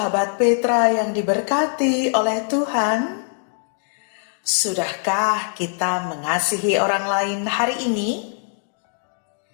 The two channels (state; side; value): silent; right; 60 dB below the other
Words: Petra yang diberkati oleh Tuhan. Sudahkah kita mengasihi orang lain hari ini?